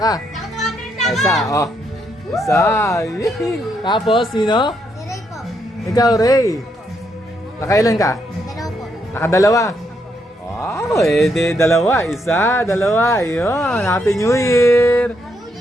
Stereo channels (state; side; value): normal; both; correlation 0.77